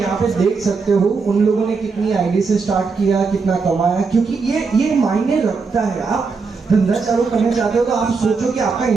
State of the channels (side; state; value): left; quieter; 4.7 dB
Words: यहाँ पे देख सकते हो उन लोगों ने कितनी आईडी से स्टार्ट किया, कितना कमाया, क्योंकि ये मायने रखता है। आप धंधा चालू करना चाहते हो तो आप सोचो कि आपका